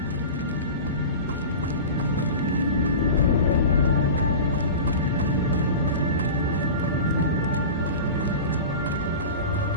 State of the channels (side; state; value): both; inverted; correlation -0.32